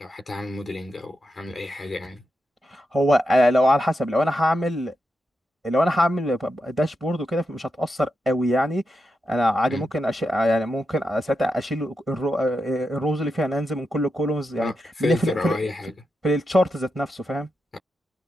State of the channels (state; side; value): normal; both; correlation 0.86